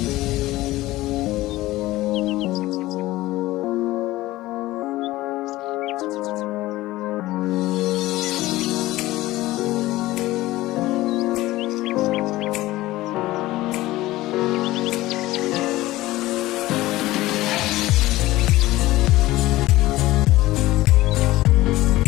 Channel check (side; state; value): right; quieter; 17.5 dB